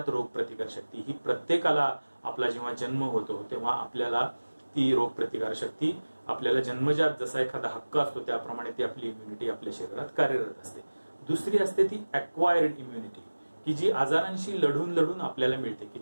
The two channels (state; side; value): inverted; both; correlation -1.00